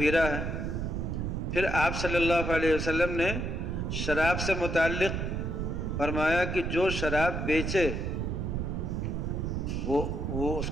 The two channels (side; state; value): right; noise; rumble, 2 dB below the sound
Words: ہے۔ پھر آپ صلی اللہ علیہ وسلم نے شراب سے متعلق فرمایا کہ جو شراب بیچے وہ اس